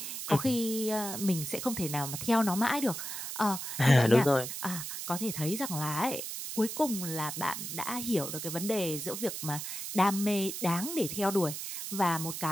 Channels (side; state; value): right; noise; hiss, 6 dB below the sound